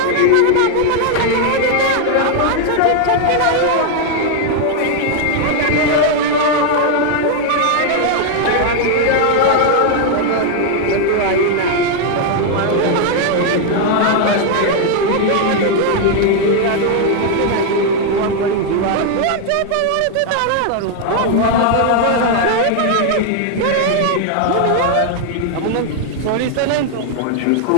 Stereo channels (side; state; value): both; different; correlation 0.00